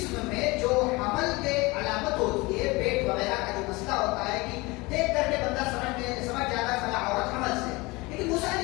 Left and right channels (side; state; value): right; quieter; 23.5 dB